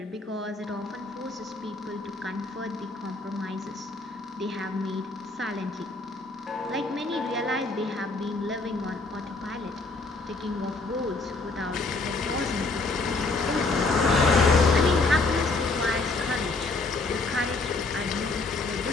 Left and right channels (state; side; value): quieter; right; 3.5 dB